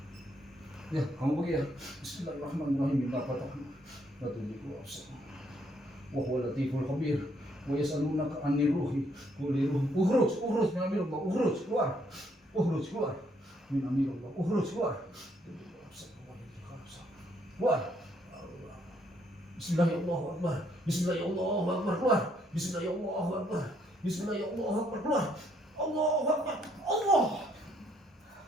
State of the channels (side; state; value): both; normal; correlation 0.70